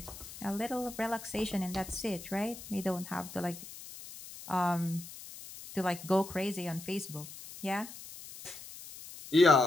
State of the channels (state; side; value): noise; left; hiss, 14 dB below the sound